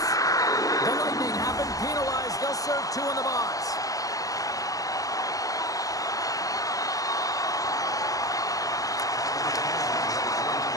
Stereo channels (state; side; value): late; right; 0.17 ms